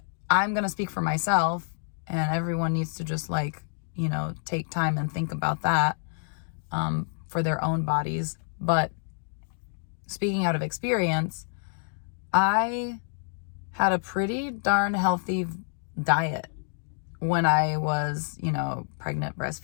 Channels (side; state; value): right; silent; digital silence